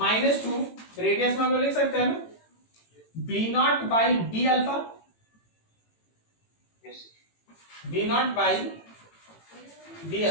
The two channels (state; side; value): late; right; 18 ms